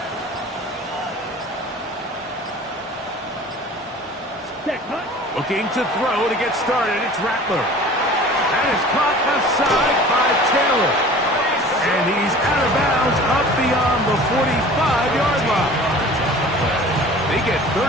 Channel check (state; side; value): normal; both; correlation 0.43